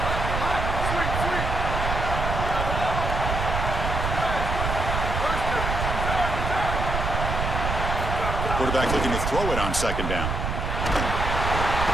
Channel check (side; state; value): right; noise; rumble, 2 dB below the sound